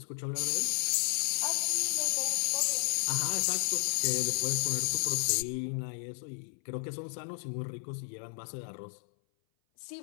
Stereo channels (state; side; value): silent; right; 56 dB below the other